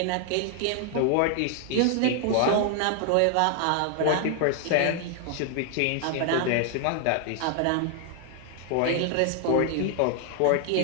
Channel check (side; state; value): both; different; correlation 0.00